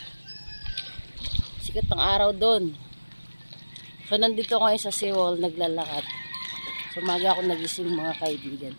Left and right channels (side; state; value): both; inverted; correlation -1.00